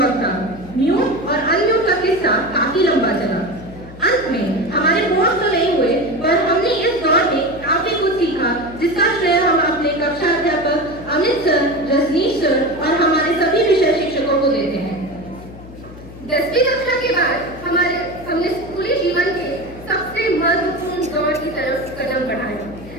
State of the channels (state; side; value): noise; left; hum, 17 dB below the sound